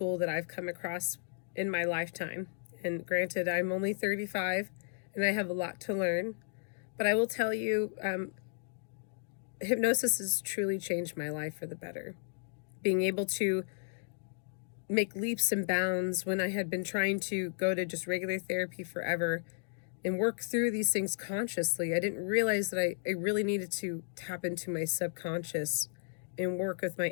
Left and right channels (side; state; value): right; silent; digital silence